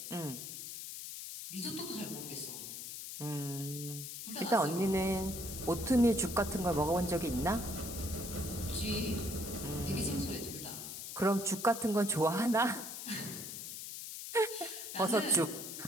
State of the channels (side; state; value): left; noise; hiss, 8 dB below the sound